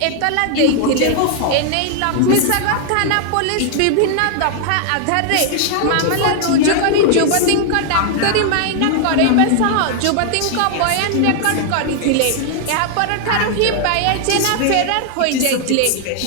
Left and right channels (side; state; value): both; different; correlation 0.00